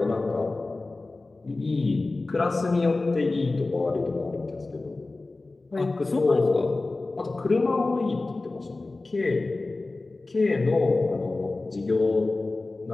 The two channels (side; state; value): right; quieter; 3.3 dB